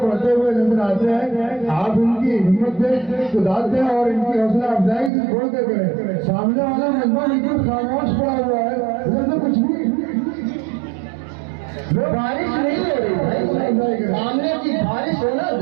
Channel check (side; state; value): left; drops out; at 5.1 s